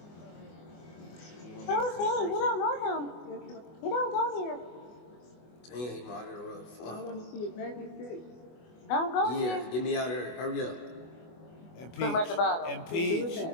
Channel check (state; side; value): late; right; 24 ms